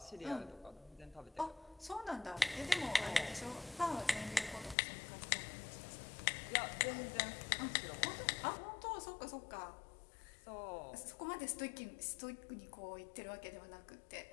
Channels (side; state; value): right; drops out; at 4.8 s